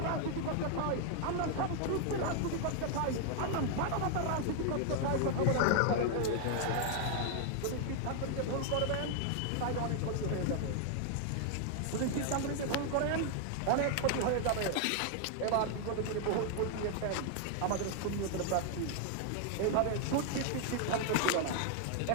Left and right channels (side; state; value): both; different; correlation 0.00